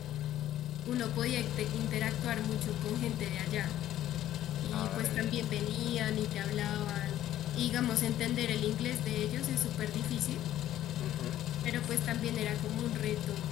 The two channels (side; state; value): right; quieter; 12.7 dB